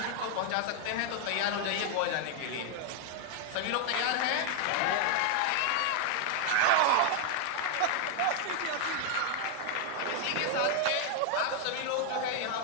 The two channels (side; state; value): both; different; correlation 0.00